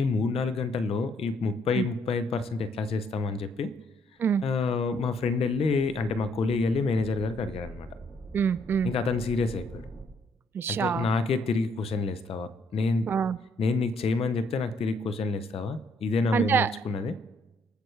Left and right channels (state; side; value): normal; both; correlation 0.69